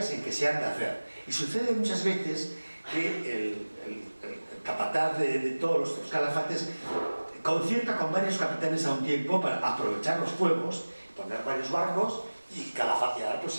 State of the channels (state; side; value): inverted; both; correlation -1.00